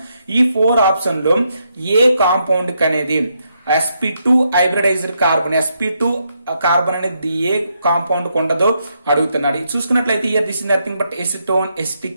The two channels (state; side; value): inverted; both; correlation -0.79